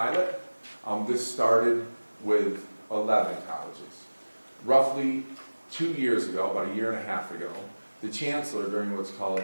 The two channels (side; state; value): both; inverted; correlation -1.00